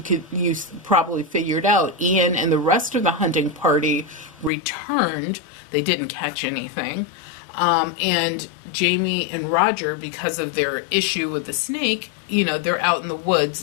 probably figured out, Ian and the rest of the hunting party returned. They didn't catch anything. And Jamie and Roger, because of their issue with the snake, they're out in the woods,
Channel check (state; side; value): drops out; right; at 4.5 s